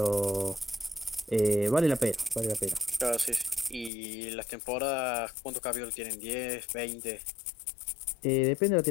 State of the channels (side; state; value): right; drops out; at 3.9 s